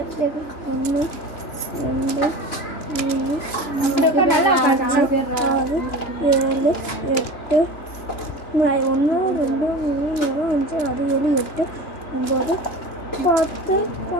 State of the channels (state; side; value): late; right; 3.0 ms